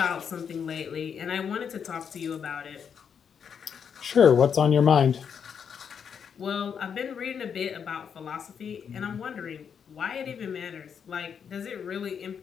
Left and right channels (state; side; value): quieter; right; 7.2 dB